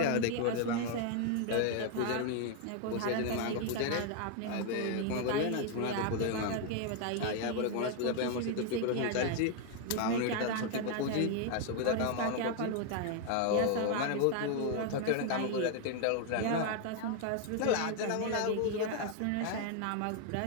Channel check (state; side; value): different; both; correlation 0.00